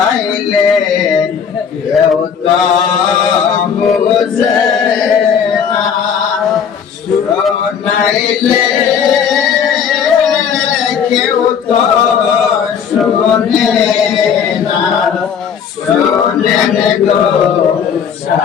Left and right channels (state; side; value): quieter; right; 7.4 dB